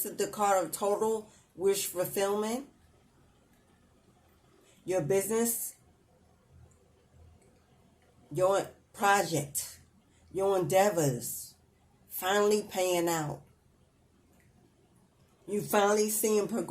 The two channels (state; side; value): identical; both; correlation 1.00